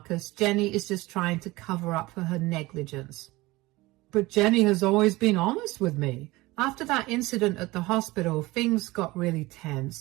Jenny is just trying to cover up for her negligence. But Jenny has always been honest with me. After that incident at the hospital, things got really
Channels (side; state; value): left; quieter; 20.6 dB